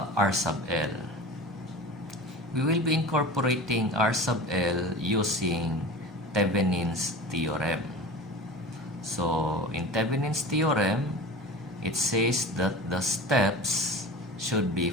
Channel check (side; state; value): both; normal; correlation 0.34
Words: R sub L? We will be incorporating R sub L using Thevenin's theorem. So, in Thevenin's theorem, it says that the steps should be